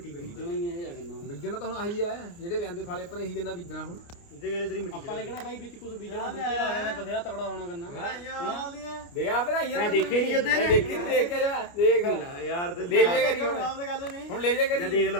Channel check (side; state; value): right; late; 29 ms